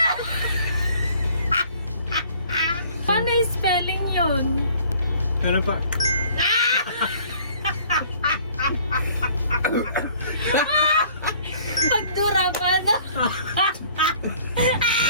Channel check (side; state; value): both; inverted; correlation -0.55